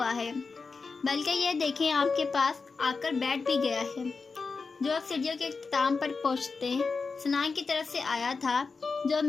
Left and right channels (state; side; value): quieter; right; 4.5 dB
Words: है, बल्कि ये देखें आपके पास आकर बैठ भी गया है। जो अब सीढ़ियों के इख्तिताम पर पहुँचते सनान की तरफ से आया था, जो